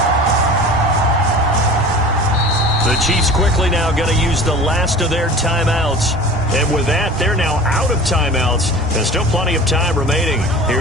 The Chiefs quickly now going to use the last of their timeouts. And with that, they're now out of timeouts. There's still plenty of time remaining here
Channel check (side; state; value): both; normal; correlation 0.39